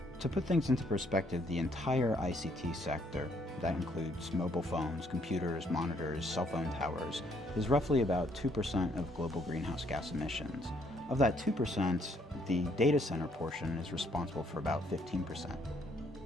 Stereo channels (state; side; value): normal; both; correlation 0.68